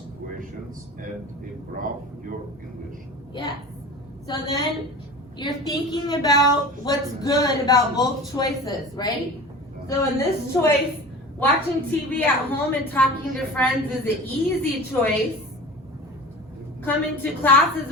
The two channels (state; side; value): normal; both; correlation 0.36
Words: questions, and improve your English. Yes. So then you're thinking about what's good about both choices, right? So in this choice, watching TV at home and talking to friends is an easy choice. Coming to class is